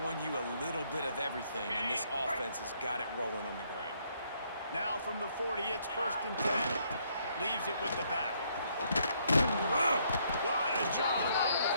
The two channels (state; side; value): inverted; both; correlation -0.70